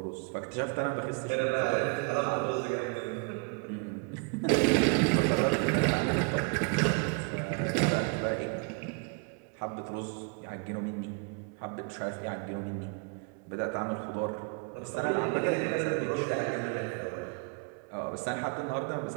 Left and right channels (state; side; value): quieter; left; 34.7 dB